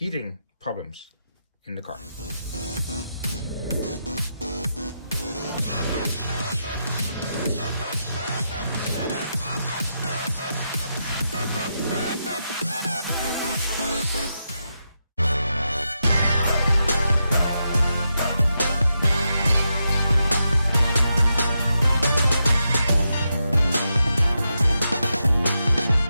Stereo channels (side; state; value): both; inverted; correlation -0.85